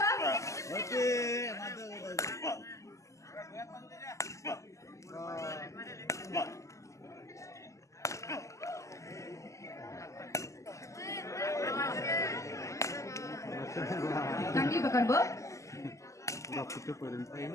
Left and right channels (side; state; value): right; late; 0.15 ms